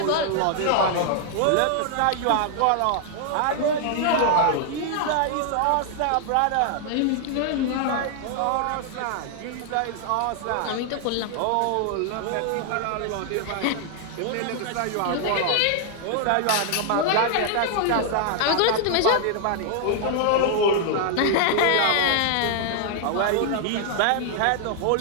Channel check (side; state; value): both; different; correlation 0.00